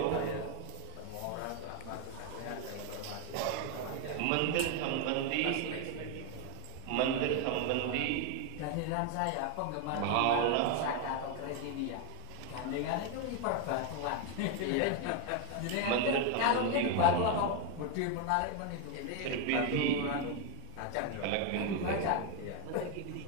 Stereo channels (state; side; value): different; both; correlation 0.01